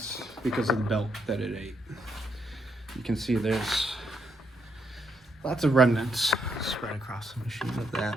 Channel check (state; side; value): normal; both; correlation 0.77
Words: because of the belt that it ate. You can see there's lots of remnants spread across the machine of